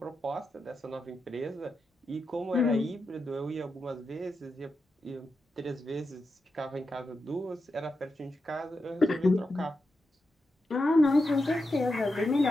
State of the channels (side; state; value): both; normal; correlation 0.88